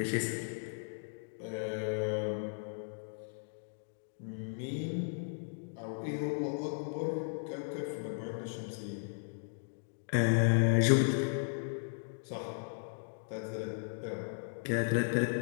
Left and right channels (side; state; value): right; silent; digital silence